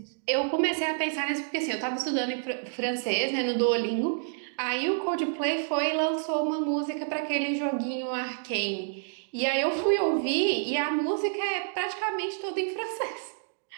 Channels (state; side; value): silent; left; digital silence